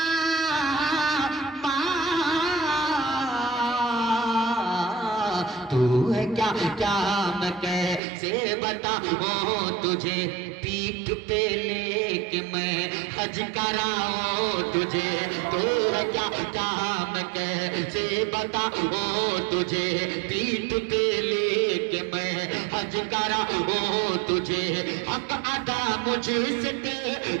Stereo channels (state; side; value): drops out; left; at 8.0 s